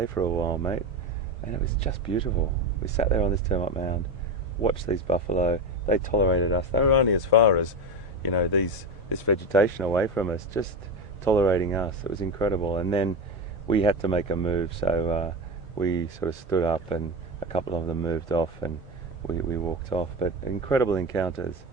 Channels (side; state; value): both; normal; correlation 0.19